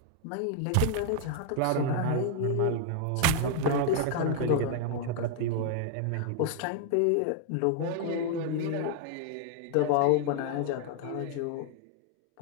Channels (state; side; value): different; both; correlation 0.00